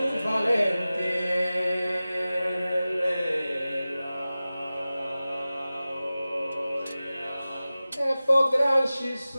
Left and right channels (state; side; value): inverted; both; correlation -0.96